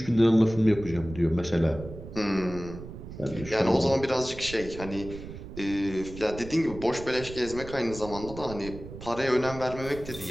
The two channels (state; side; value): noise; right; rumble, 12 dB below the sound